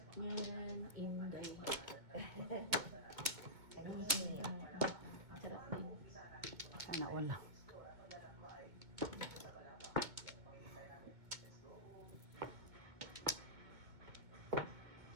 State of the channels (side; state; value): left; late; 2.2 ms